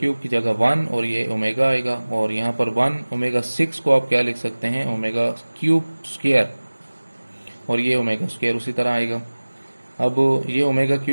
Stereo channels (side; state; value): both; inverted; correlation -1.00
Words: की जगह 1 और ये ओमेगा आएगा, और यहाँ पर 1 ओमेगा 6 को आप क्या लिख सकते हैं ओमेगा क्यूब स्क्वायर, और ये ओमेगा स्क्वायर उसी तरह आएगा। अब ये ओमेगा